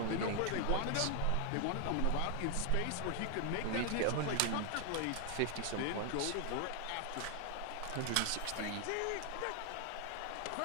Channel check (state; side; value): different; both; correlation 0.00